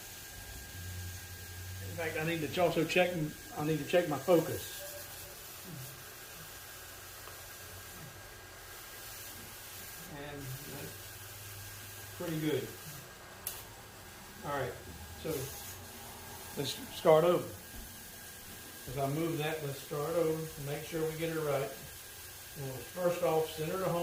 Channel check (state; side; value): identical; both; correlation 1.00